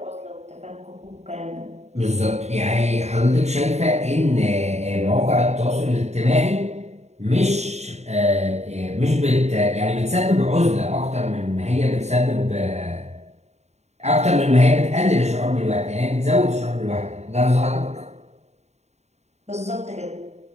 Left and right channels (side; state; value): left; late; 0.32 ms